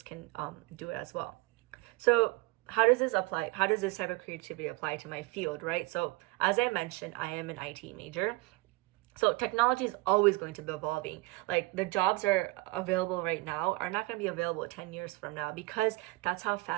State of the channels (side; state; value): left; quieter; 22.4 dB